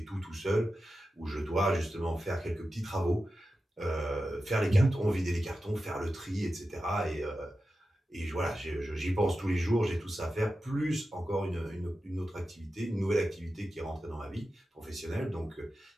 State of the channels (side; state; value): both; normal; correlation 0.92